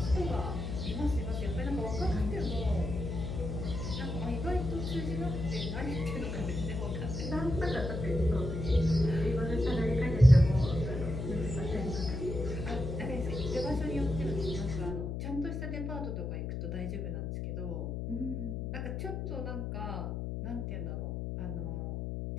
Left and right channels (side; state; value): left; noise; hum, 3 dB below the sound